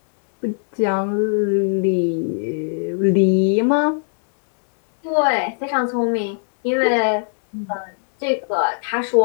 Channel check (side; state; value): right; silent; 66 dB below the other